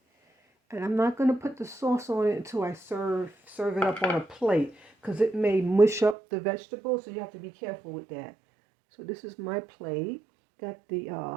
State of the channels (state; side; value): drops out; left; at 6.2 s